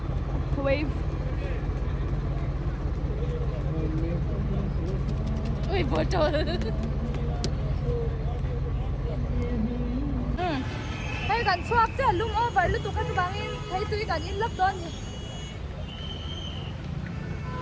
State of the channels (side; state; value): both; identical; correlation 1.00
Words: Wave. Uy, botol. Hey, kan swak cha lum over lu tu ka tu bangin. Hey, tu kan in lap don ni.